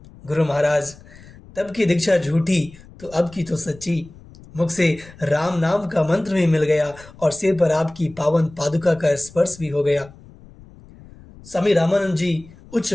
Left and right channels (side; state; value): left; noise; rumble, 21 dB below the sound